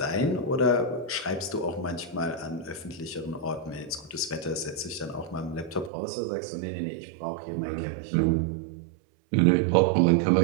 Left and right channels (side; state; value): left; drops out; at 5.9 s